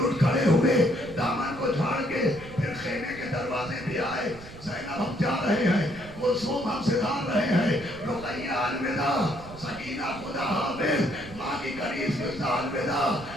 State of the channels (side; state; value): right; noise; rumble, 16 dB below the sound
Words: اٹھ کھڑے ہوئے، دامن کو جھاڑ کے پھر خیمے کے دروازے بھی آئے، زینب ہم جا رہے ہیں، کلثوم ہم سدھار رہے ہیں، رقیہ الوداع، سکینہ خدا حافظ، ماں کی کنیز قصہ الوداع،